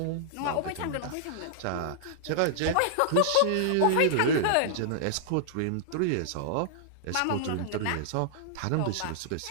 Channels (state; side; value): different; both; correlation -0.01